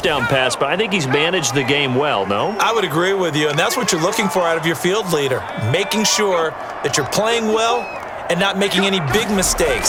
pass, but I think he's managed the game well, no? I would agree with you, and that's what you're looking for out of your field leader, making sure that you're playing well and not making any big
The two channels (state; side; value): identical; both; correlation 1.00